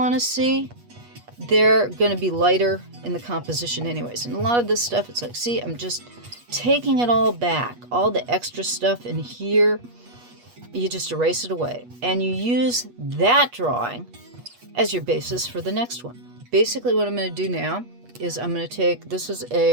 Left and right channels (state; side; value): late; left; 8.3 ms